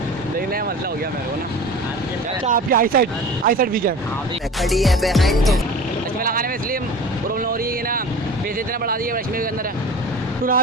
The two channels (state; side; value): normal; both; correlation 0.38